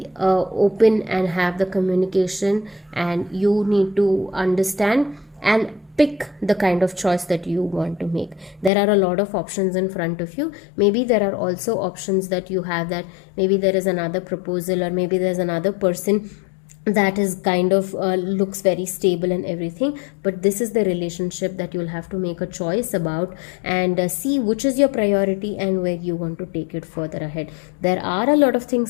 open and have the communication, and you need to understand and pick the kind of choice that you want to make. There are a lot of options in front of you. Maybe there are also options that you have, that maybe there is another proposal, or maybe there's another person that is kind of looks very stable and everything, but this is the relationship that you'll have to make a choice about, and see which is your priority and where you want to take it further ahead. There are a lot of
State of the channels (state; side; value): drops out; right; at 8.7 s